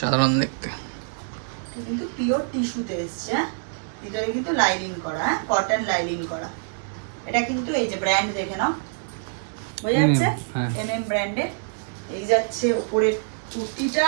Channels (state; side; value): silent; left; digital silence